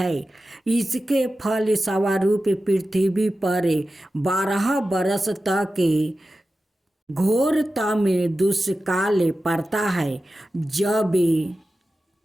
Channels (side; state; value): both; normal; correlation 0.93